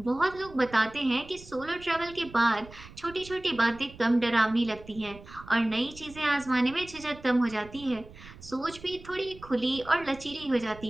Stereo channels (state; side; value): noise; right; rumble, 19 dB below the sound